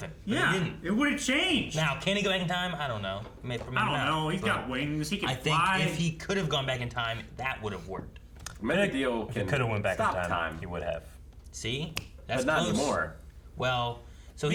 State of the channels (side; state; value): both; identical; correlation 1.00